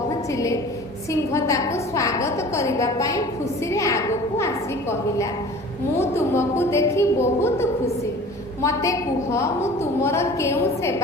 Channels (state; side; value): normal; both; correlation 0.43